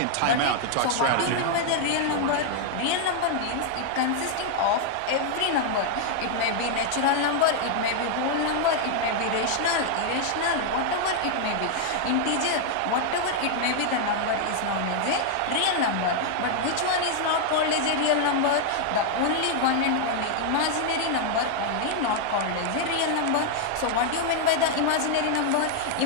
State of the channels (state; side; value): different; both; correlation 0.00